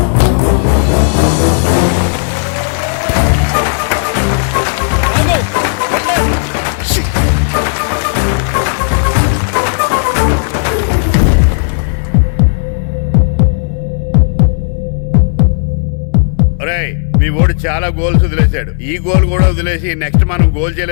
మీ ఓడి చాలా గోల్స్ వదిలేశాడు. ఈ గోల్ కూడా వదిలేసి నెక్స్ట్ మనం గోల్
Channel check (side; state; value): right; silent; digital silence